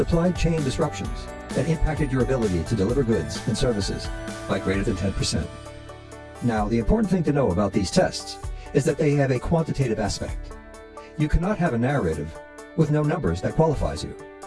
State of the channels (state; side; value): identical; both; correlation 1.00